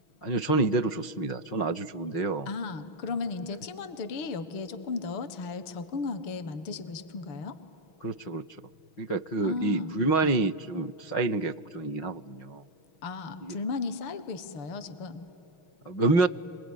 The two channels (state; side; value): late; right; 6.2 ms